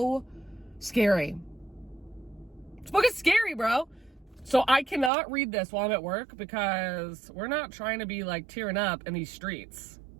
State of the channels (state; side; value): drops out; left; at 5.1 s